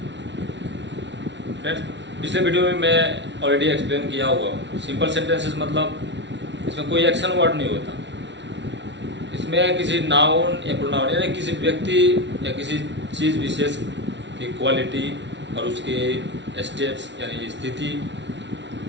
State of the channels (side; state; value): left; late; 0.52 ms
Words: फ्रेंड्स, पिछले वीडियो में मैं ऑलरेडी एक्सप्लेन किया हुआ हूँ। सिंपल सेंटेंसेस मतलब इसमें कोई एक्शन वर्ड नहीं होता। इसमें किसी नाउन या प्रोनाउन यानी किसी व्यक्ति या किसी चीज़ विशेष की क्वालिटी और उसके स्टेट्स यानी स्थिति